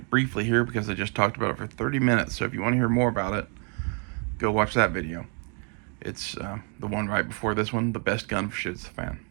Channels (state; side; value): quieter; left; 38.8 dB